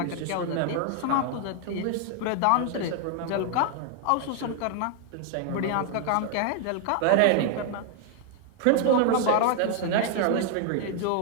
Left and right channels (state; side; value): different; both; correlation 0.00